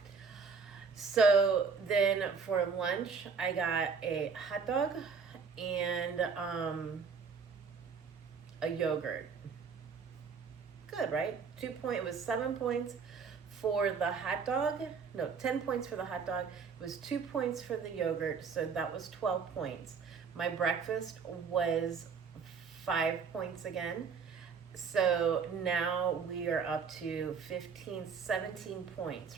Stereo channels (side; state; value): left; quieter; 5.6 dB